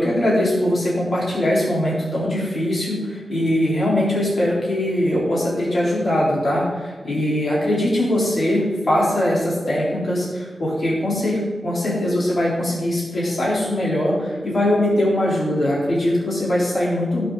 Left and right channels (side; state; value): both; normal; correlation 0.86